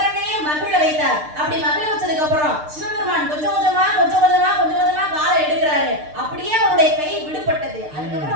மகிழ வைத்தார். அப்படி மகிழ வச்சதுக்கு அப்புறம் சிவபெருமான் கொஞ்சம் கொஞ்சமா காலை எடுக்கிறாரு. அப்படியே அவருடைய கை விடுபட்டது. அதுக்கப்புறம்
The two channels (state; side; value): late; left; 6.6 ms